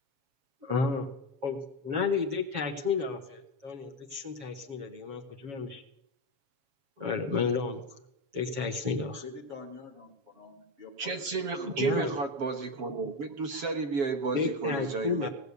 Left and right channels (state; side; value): late; left; 7.3 ms